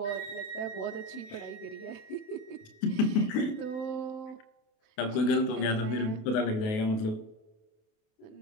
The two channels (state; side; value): late; right; 28 ms